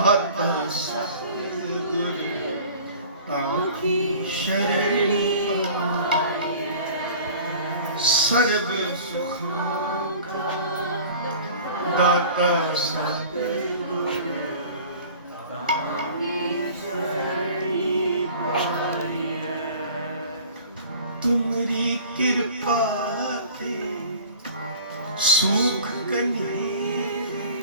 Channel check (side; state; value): both; inverted; correlation -0.44